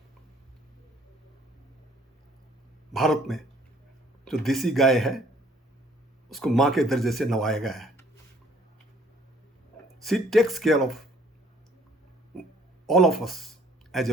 भारत में जो देसी गाय है उसको माँ के दर्जे से नवाया गया है. She takes care of all of us as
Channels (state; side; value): normal; both; correlation 0.59